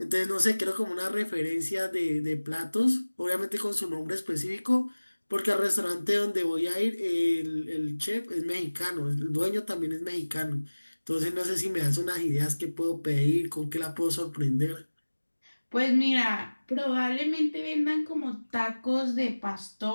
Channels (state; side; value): inverted; both; correlation -1.00